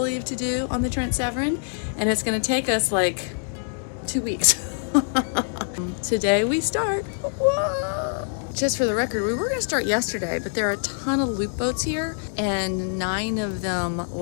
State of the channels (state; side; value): silent; right; digital silence